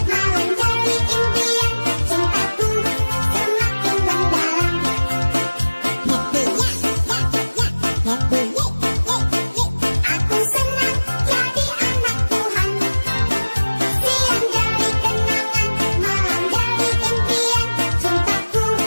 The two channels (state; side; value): inverted; both; correlation -1.00